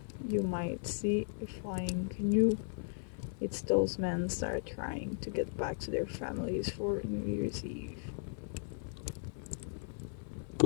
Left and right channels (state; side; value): silent; right; 53 dB below the other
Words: you might see a flying canoe. It's those men start trying to get back to their families for New Year's Eve.